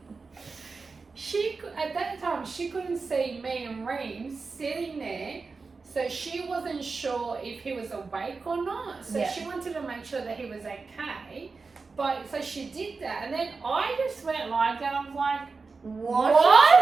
at that time she couldn't see me and Reem sitting there, so she wasn't sure if he was awake or not. So Yeah. she wanted to make sure that he was okay. But so she did that, and then I just went like that. I was like, What?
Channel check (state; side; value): quieter; left; 4.4 dB